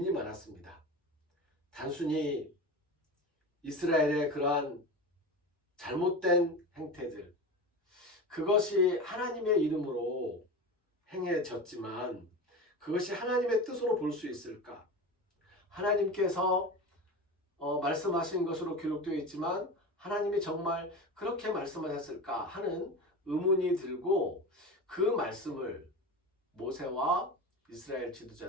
많았습니다. 단순히 이스라엘의 그러한 잘못된 행태들, 그것이 하나님의 이름으로 행해졌지만 그것이 하나님의 뜻으로 볼 수 있을까? 하나님께서 말씀하신 것으로 기록되어 있지만 하나님이 정말 그렇게 말씀하셨을까 하는 의문이 들고 그 말씀을 모세와 이스라엘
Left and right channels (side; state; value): both; normal; correlation 0.27